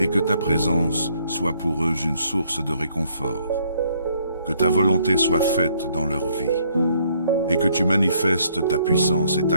que ta présence soit pour eux une source de réconfort. Que ta volonté soit faite dans leur vie, et que tu manifestes ta puissance et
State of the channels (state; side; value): inverted; both; correlation -0.67